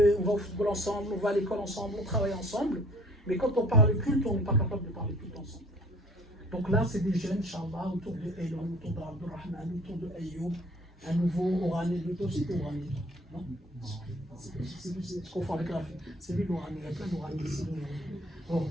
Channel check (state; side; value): normal; both; correlation 0.53